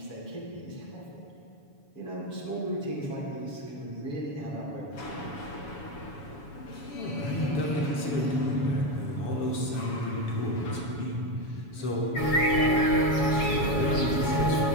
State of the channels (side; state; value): right; late; 7.1 ms